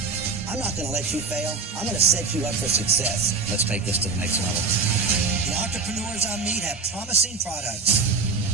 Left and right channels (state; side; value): quieter; left; 4.5 dB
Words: I'm not going to let you fail. I'm going to set you up for success. Let's take this to the next level. The entrepreneurs I meet have promising products.